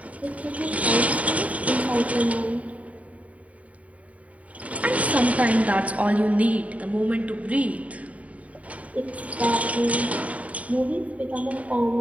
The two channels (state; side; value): late; left; 0.068 ms